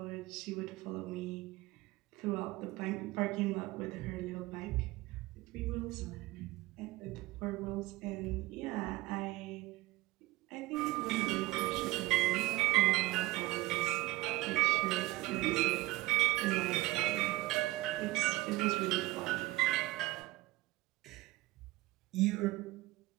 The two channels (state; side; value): quieter; left; 19.7 dB